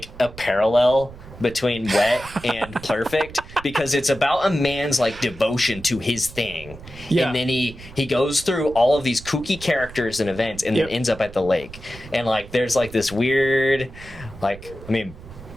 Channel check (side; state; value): right; noise; rumble, 17 dB below the sound